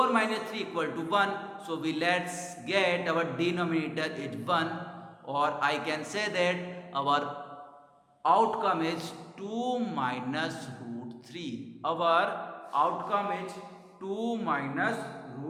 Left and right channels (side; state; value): both; identical; correlation 1.00